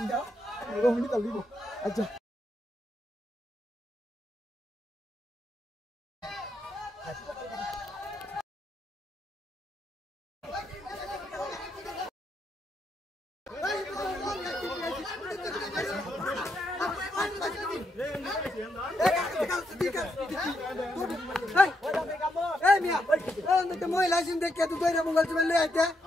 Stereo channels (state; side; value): normal; both; correlation 0.80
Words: রোহিণী তালিব আচ্ছা महिला देखे तू तेरे मोबाइल से ले आते